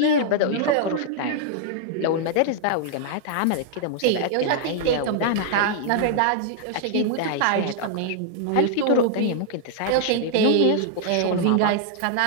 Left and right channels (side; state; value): both; different; correlation -0.01